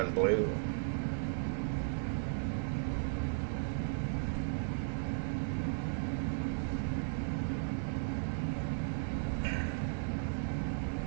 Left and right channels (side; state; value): left; silent; 54 dB below the other